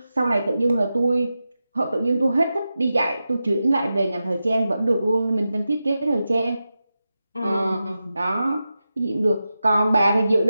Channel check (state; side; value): inverted; both; correlation -0.91